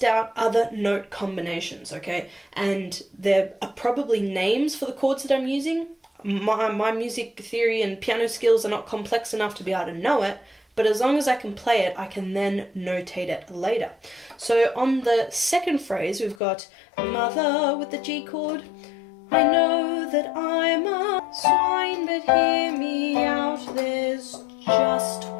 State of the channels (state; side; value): drops out; right; at 16.4 s